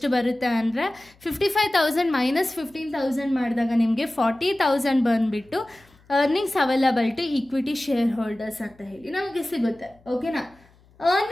ಬರುತ್ತೆ ಅಂದರೆ 55,000 ಮೈನಸ್ 15,000 ಮಾಡಿದಾಗ ನಿಮಗೆ 40,000 ಬಂದುಬಿಟ್ಟು earnings available to equity share holders ಅಂತ ಹೇಳಿ ನಮಗೆ ಸಿಗುತ್ತೆ. ಓಕೆನಾ.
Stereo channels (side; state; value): left; noise; hum, 30 dB below the sound